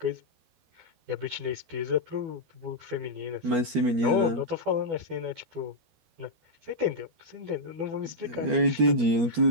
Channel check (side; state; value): left; late; 13 ms